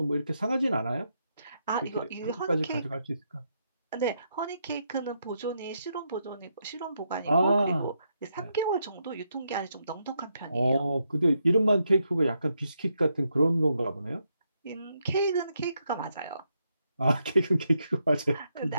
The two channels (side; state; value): both; inverted; correlation -0.80